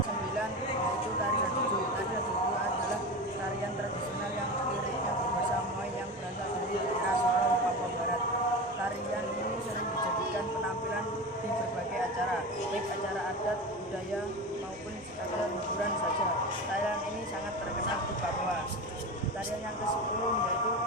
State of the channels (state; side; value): normal; both; correlation 0.26